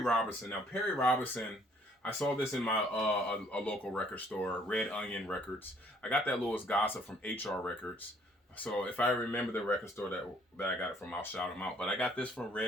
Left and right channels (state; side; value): normal; both; correlation 0.62